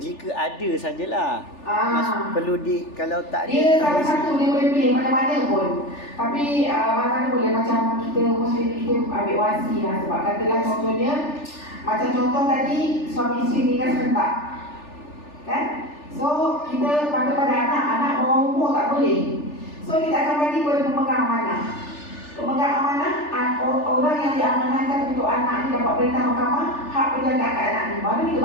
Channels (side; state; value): right; late; 3.4 ms